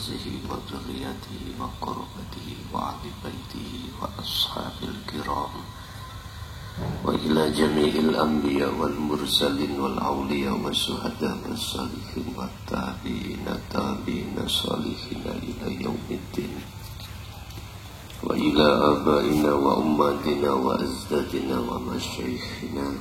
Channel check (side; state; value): both; identical; correlation 1.00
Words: wa dzurriyyatihi wa qurrabatihi wa ahli baitihi wa ashabil kiram wa ila jami'il anbiya wal mursalin wal awliya wa syuhada was salihin wa tabi'ina salihin ila yaumiddin wa ila abaina wa ummatina wa azdadina wa masyaikhina